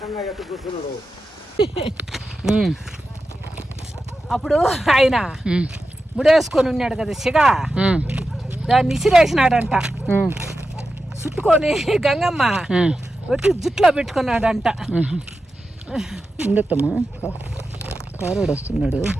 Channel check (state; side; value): normal; both; correlation 0.91